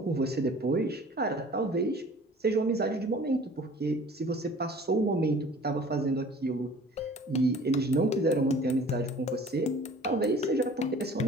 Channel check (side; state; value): both; normal; correlation 0.47